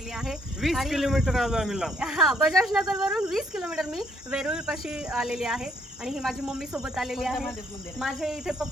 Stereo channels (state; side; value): normal; both; correlation 0.68